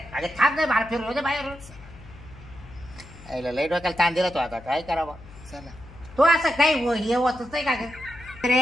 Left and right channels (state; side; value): noise; left; hum, 19 dB below the sound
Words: थांब नाही मला फिरलो दे बाहेर. लई डोक्याला ताण दिला तो आता काय करावं. चला तो असं काही हे होतच नाही का